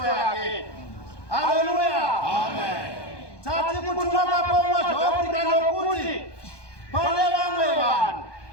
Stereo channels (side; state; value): right; late; 1.2 ms